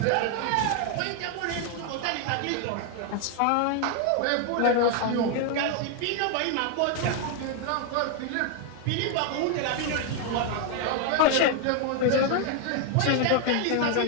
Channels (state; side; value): different; both; correlation 0.01